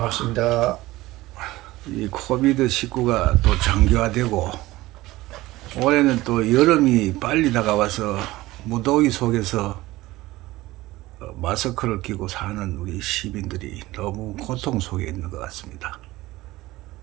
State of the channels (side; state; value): left; quieter; 18.2 dB